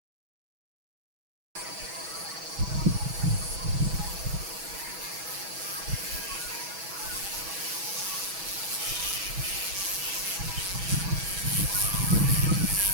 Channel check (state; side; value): late; left; 6.1 ms